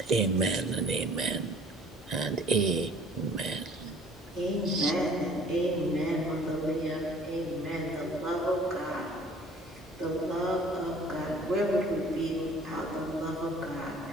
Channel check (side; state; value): both; normal; correlation 0.52